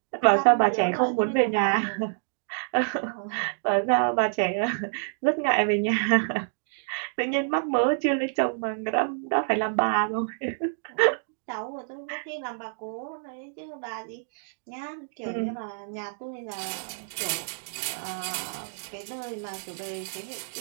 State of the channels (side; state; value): left; silent; digital silence